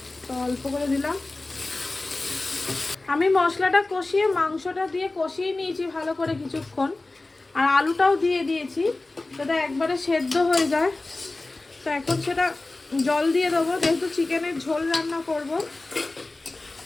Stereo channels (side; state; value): right; quieter; 3.1 dB